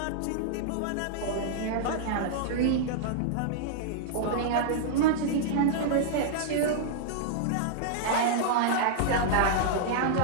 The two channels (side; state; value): both; different; correlation -0.01